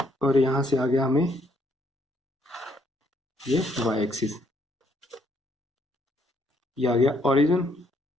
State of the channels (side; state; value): both; normal; correlation 0.70